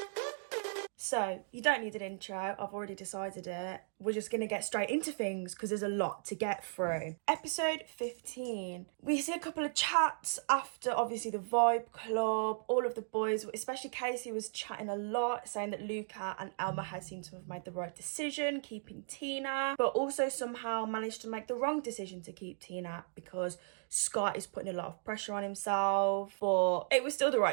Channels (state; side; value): silent; left; digital silence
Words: So, you don't need an intro, I've already decided it. We're just gonna get straight into things because there's a lot to get through. Episode 15. We see a couple of chats after, obviously, the Vibe Club. All of the boys, especially Casey, was chatting a lot, saying that Luca and Elma had seemed to have made the right decision, keeping Tina, but also somehow managed to make the wrong decision to keep Tina because Scott is putting a lot of pressure on himself, but it was still the